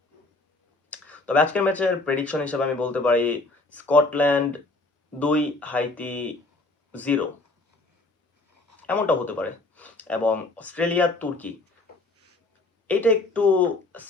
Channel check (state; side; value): quieter; right; 3.1 dB